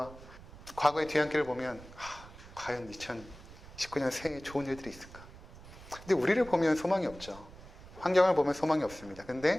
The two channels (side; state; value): right; noise; rumble, 18 dB below the sound